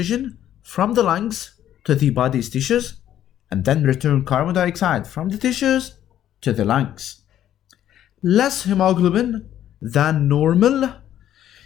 from the lungs to the body's tissues and then return carbon dioxide from the tissues to the lungs. Less hemoglobin than normal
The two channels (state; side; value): quieter; right; 11.4 dB